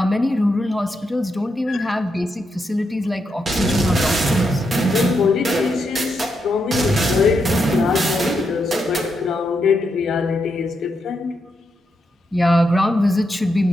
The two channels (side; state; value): both; normal; correlation 0.82